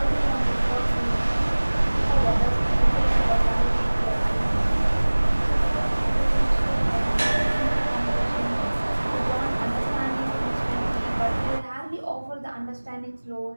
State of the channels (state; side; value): inverted; both; correlation -1.00